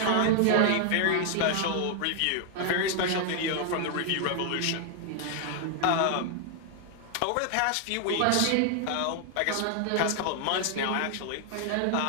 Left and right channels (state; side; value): different; both; correlation 0.00